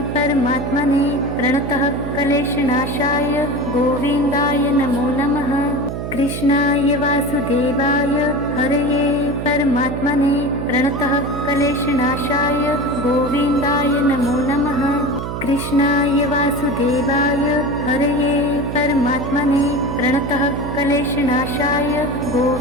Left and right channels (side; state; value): right; noise; hum, 5 dB below the sound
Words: परमात्मने प्रणतः क्लेशनाशाय गोविन्दाय नमो नमः। कृष्णाय वासुदेवाय हरये परमात्मने प्रणतः क्लेशनाशाय गोविन्दाय नमो नमः। कृष्णाय वासुदेवाय हरये परमात्मने प्रणतः क्लेशनाशाय